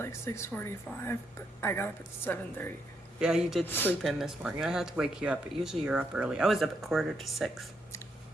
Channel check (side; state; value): both; normal; correlation 0.77